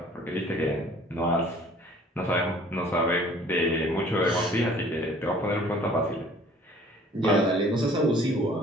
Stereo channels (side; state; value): both; normal; correlation 0.53